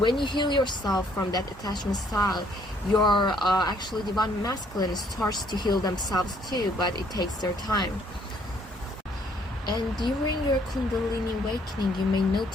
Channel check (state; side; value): normal; both; correlation 0.65